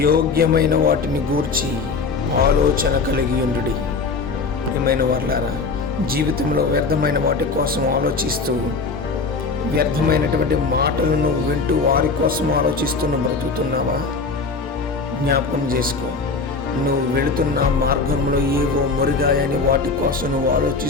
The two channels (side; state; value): right; quieter; 4.3 dB